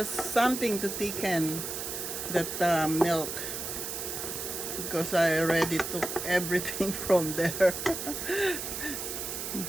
something to thicken that milk, because I already took everything from there.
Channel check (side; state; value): right; noise; hiss, 5 dB below the sound